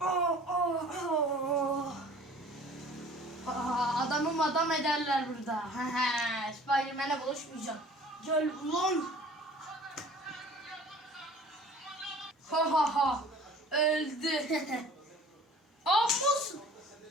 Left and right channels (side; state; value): both; normal; correlation 0.48